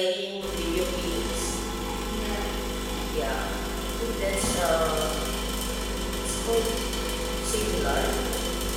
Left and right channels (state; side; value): identical; both; correlation 1.00